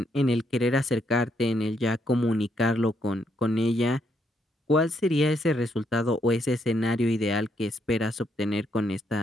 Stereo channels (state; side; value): normal; both; correlation 0.75